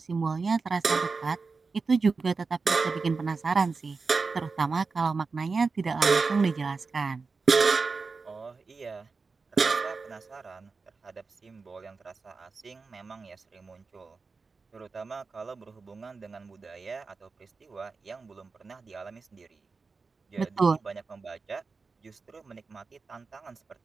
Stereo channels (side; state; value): left; quieter; 4.4 dB